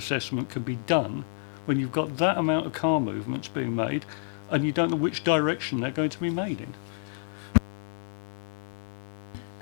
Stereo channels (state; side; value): silent; right; digital silence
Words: can be done when you've got that amount of car movements being made and you don't know which direction they're going to be made